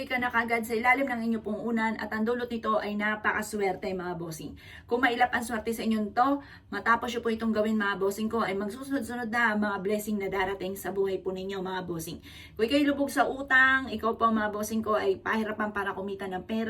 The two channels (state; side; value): identical; both; correlation 1.00